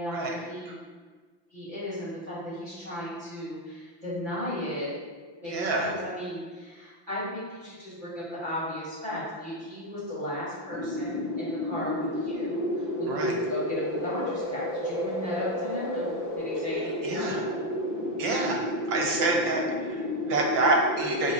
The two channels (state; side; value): late; left; 5.9 ms